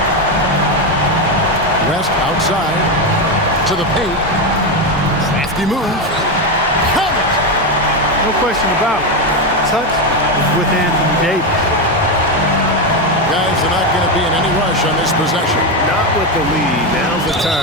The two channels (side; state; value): both; normal; correlation 0.10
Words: West outside to the paint. Crafty move. Count it! No question about it. Touch is with Anthony Davis. Guys are not going to be in any rush on this possession. Not with the lead. Now's the